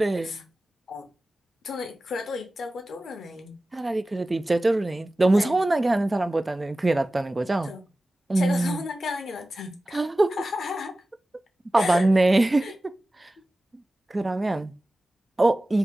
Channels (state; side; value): normal; both; correlation 0.96